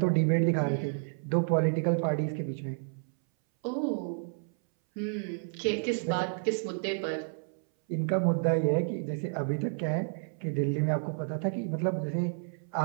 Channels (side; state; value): left; silent; 57 dB below the other